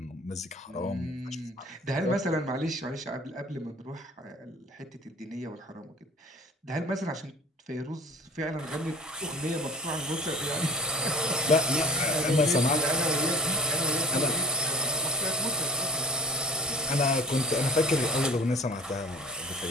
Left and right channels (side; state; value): both; normal; correlation 0.42